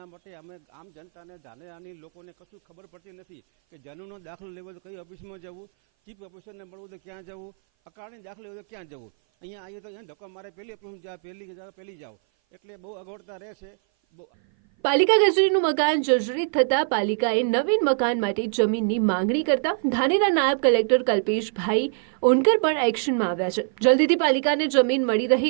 માટે અમે આમ જનતાને ધાનેરાની લોકોને કશું ખબર પડતી નથી કે જમીનનો દાખલો લેવો તો કઈ ઓફિસમાં જવું, ચીફ ઓફિસરને મળવું તો ક્યાં જવું, અકાળની દાખલો લેવો તો ક્યાં જવું, અહીંયા આવીએ તો અહીંયા ધક્કો મારે પહેલી ઓફિસમાં જાઓ, પહેલી જાઓ, એટલે બહુ અગવડતા રહેશે। પાલિકા કચેરીનું મકાન જર્જરિત થતા પાલિકાએ નવીન મકાન માટે જમીનની માંગણી કરતા ધાનેરા નાયબ કલેક્ટર કલ્પેશભાઈ ઓનકર પણ એક્શનમાં આવ્યા છે। જલ્દીથી પાલિકાને જમીન મળી રહે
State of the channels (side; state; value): left; silent; 57 dB below the other